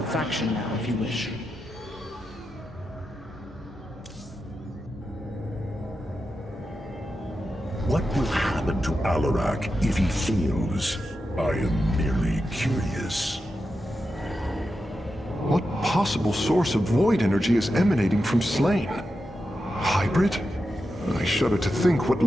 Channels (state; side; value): normal; both; correlation 0.89